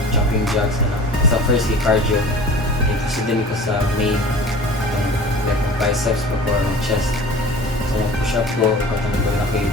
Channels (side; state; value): both; normal; correlation 0.42